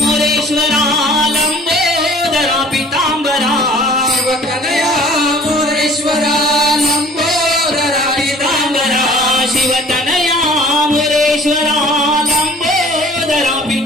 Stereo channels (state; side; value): normal; both; correlation 0.50